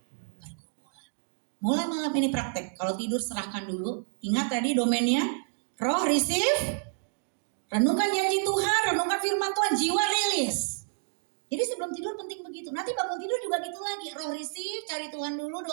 pergumulan. Mulai malam ini praktek. Kalau tidur serahkan dulu. Ingat tadi domainnya. Roh receive. Renungkan janji Tuhan. Renungkan firman Tuhan. Jiwa rilis. Jadi sebelum tidur penting begitu. Nanti bangun tidur juga gitu lagi. Roh receive. Cari Tuhan dulu.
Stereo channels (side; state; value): left; silent; digital silence